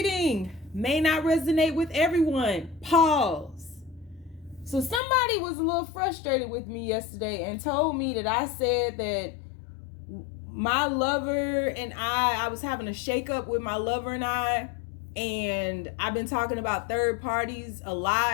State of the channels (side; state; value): right; drops out; at 5.0 s